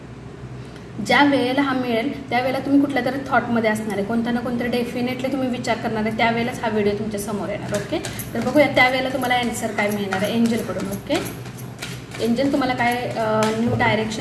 ज्या वेळेला हा मिळेल त्यावेळेला तुम्ही कुठल्या तरी थॉटमध्ये असणार आहे, कोणता ना कोणतरी डेफिनेटली तुम्ही विचार करणार आहे, त्यावेळेलाच हा व्हिडिओ तुमच्या समोर येणार. ओके, तर बघूया त्यावेळेला तुम्हाला आन्सर काय मिळणार आहे एंजलकडून. ओके, एंजल तुम्हाला काय न्यू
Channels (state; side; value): identical; both; correlation 1.00